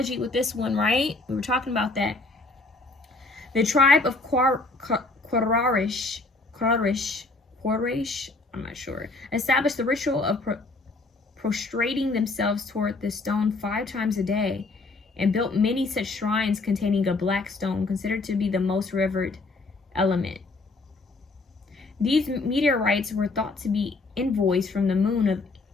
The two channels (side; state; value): right; quieter; 3.4 dB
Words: with this one, right? We were talking about that. The tribe of Quraysh, I'm not sure, established the ritual of prostrating themselves toward the stone 5 times a day, and built many such shrines containing a black stone, considered to be the most revered element. These meteorites were thought to be envoys from the moon